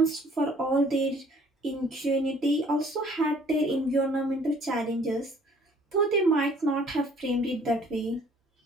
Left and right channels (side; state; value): both; normal; correlation 0.57